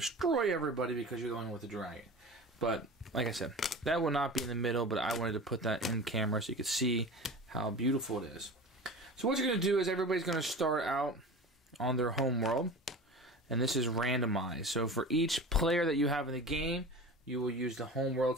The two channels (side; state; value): both; normal; correlation 0.34